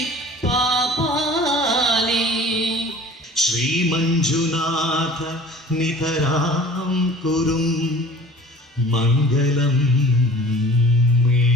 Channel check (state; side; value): normal; both; correlation 0.45